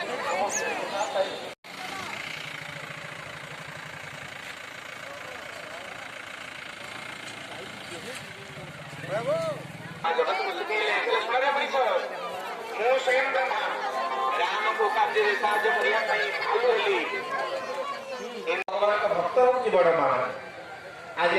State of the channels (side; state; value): both; identical; correlation 1.00